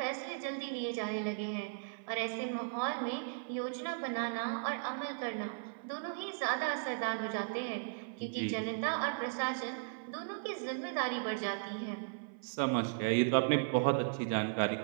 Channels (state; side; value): silent; left; 53 dB below the other